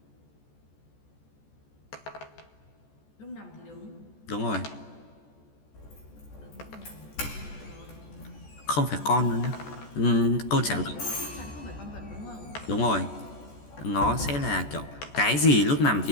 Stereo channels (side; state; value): right; late; 14 ms